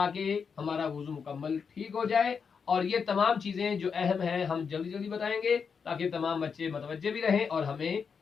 हमारा वुज़ू मुकम्मल ठीक हो जाए। और ये तमाम चीज़ें जो अहम हैं हम जल्दी जल्दी बताएंगे ताकि तमाम बच्चे मुतवज्जे भी रहें और हमें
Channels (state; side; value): quieter; right; 6.0 dB